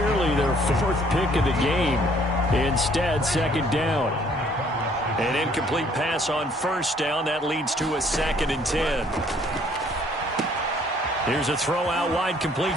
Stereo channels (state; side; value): normal; both; correlation 0.61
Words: their 4th pick of the game. Instead, 2nd down. An incomplete pass on first down. That leads to a 2nd and 10. Here's a throw out wide,